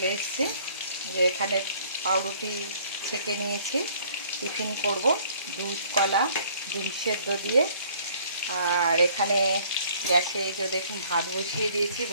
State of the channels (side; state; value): both; inverted; correlation -0.57